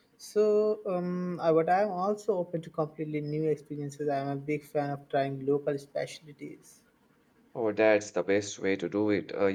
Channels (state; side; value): identical; both; correlation 1.00